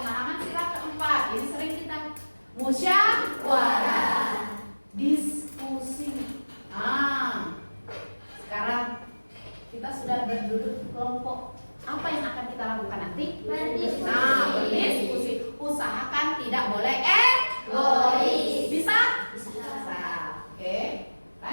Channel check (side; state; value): both; inverted; correlation -1.00